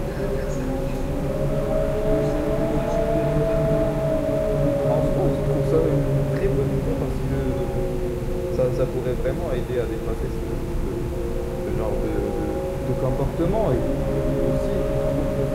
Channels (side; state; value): both; identical; correlation 1.00